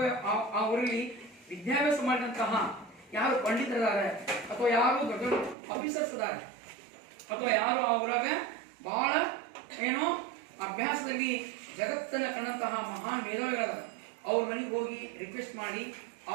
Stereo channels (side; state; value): left; drops out; at 5.6 s